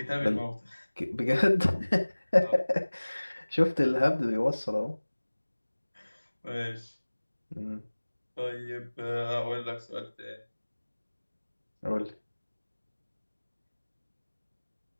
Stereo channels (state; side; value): inverted; both; correlation -1.00